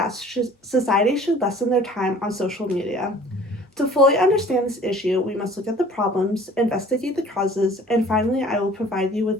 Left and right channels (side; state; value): both; normal; correlation 0.49